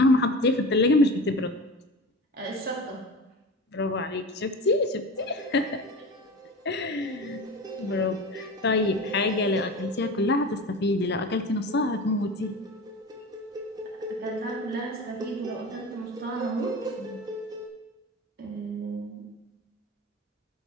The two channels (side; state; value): both; normal; correlation 0.31